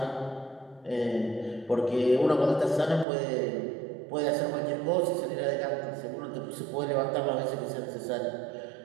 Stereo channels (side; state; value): left; drops out; at 3.1 s